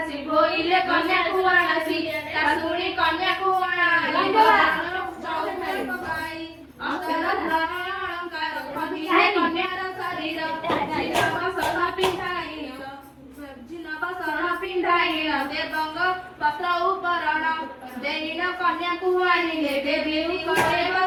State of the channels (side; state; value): both; identical; correlation 1.00